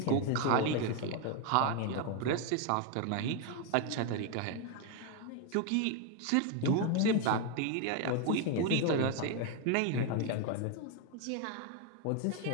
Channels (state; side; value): different; both; correlation 0.01